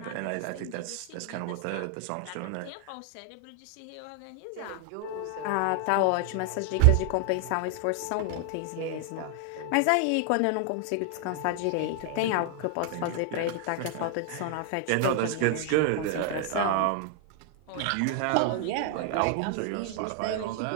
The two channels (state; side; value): different; both; correlation 0.00